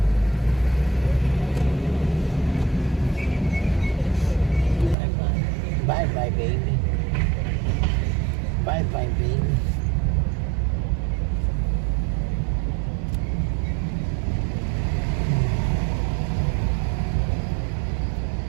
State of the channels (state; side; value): drops out; left; at 5.0 s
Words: Bye bye, baby. Bye bye, baby.